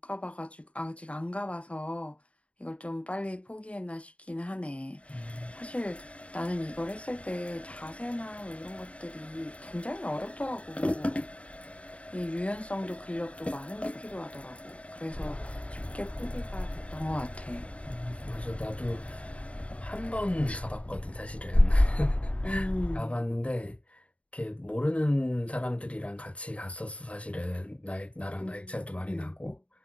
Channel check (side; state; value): right; late; 0.064 ms